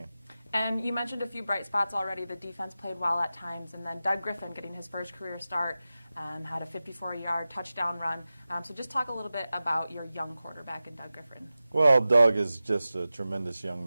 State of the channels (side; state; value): both; inverted; correlation -0.95